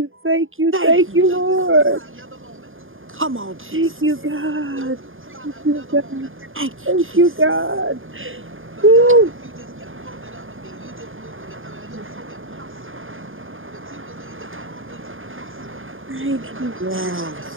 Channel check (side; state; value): left; late; 0.59 ms